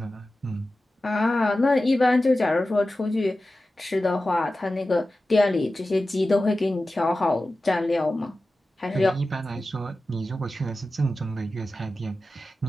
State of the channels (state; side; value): normal; both; correlation 0.94